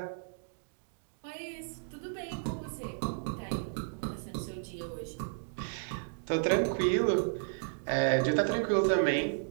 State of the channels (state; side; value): silent; left; digital silence